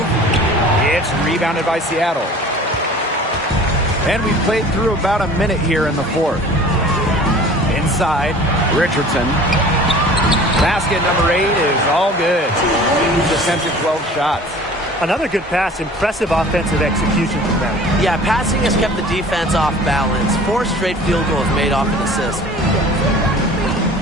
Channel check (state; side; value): normal; both; correlation 0.45